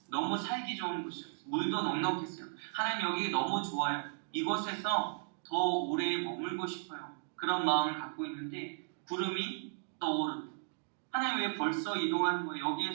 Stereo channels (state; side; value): silent; left; digital silence